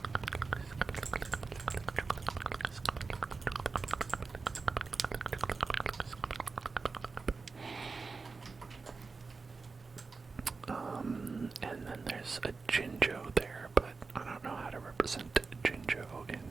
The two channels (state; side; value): quieter; left; 4.3 dB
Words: And then there's a Jinjo there, but I don't know how to represent Jinjo in